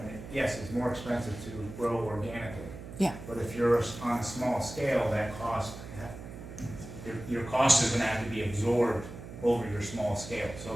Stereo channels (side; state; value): right; noise; hum, 12 dB below the sound